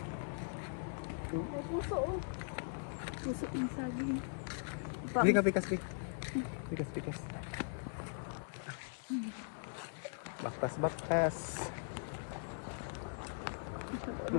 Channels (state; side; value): silent; right; digital silence